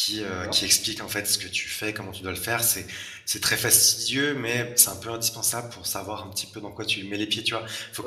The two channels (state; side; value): identical; both; correlation 1.00